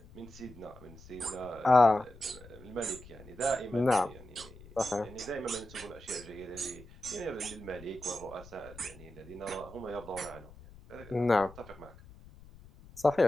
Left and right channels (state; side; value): noise; left; rumble, 19 dB below the sound